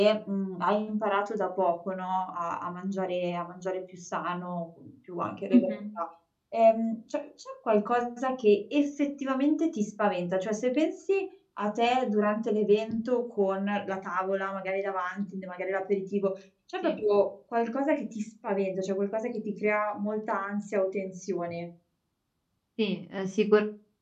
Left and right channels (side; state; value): both; identical; correlation 1.00